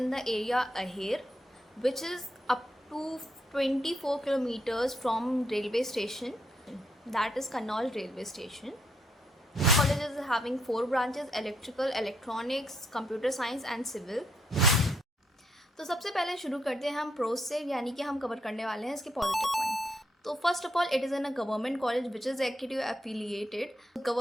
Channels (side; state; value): both; normal; correlation 0.76